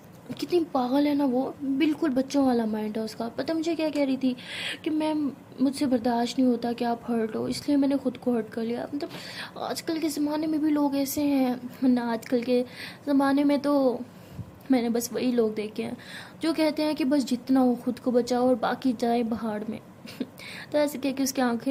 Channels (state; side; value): identical; both; correlation 1.00